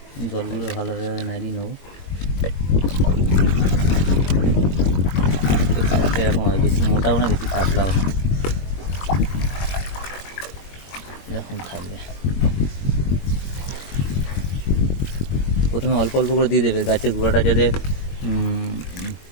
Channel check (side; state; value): right; late; 22 ms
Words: জলগুলো ভালোভাবে নাড়িয়ে নেবো। কালারটা এরকম হয়, বেশি মোটাও না বেশি পাতলাও না, এরকম থাকবে। প্রথমে অল্প অল্প করে দিয়ে দেবে, গাছের গোড়াটা যাতে